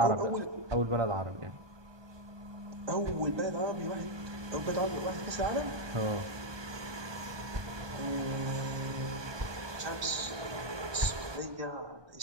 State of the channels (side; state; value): left; late; 1.2 ms